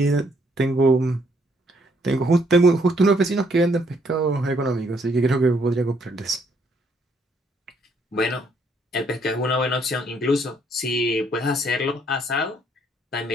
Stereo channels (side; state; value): both; normal; correlation 0.69